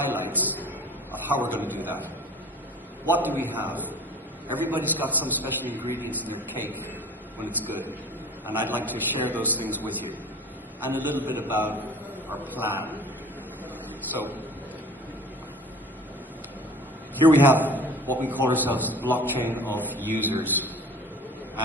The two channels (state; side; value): normal; both; correlation 0.43